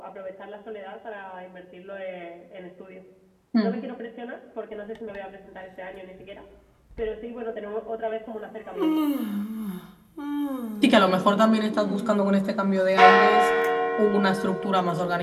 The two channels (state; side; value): identical; both; correlation 1.00